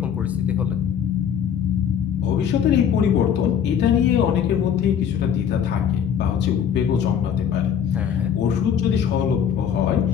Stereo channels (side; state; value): right; quieter; 8.4 dB